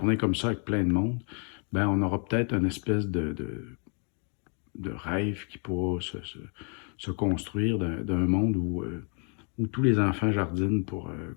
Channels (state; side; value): quieter; right; 38.6 dB